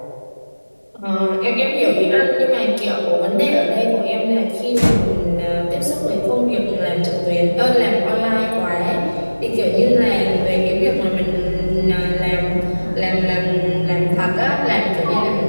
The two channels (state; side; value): inverted; both; correlation -1.00